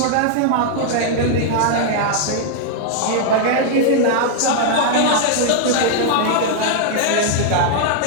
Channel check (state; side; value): different; both; correlation -0.01